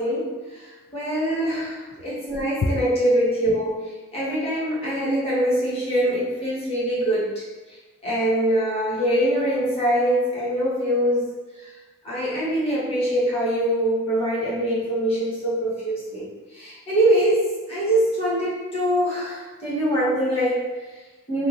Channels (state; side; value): normal; both; correlation 0.44